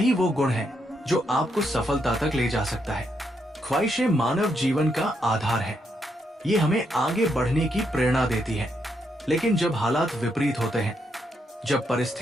वो गुण है जो आपको सफलता तक ले जा सकता है। ख्वाहिशें मानव जीवन का आधार है। ये हमें आगे बढ़ने की प्रेरणा देती है। लेकिन जब हालात विपरीत होते हैं, जब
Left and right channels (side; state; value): both; normal; correlation 0.79